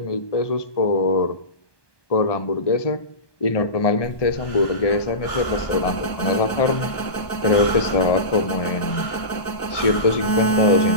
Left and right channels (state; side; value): late; right; 1.2 ms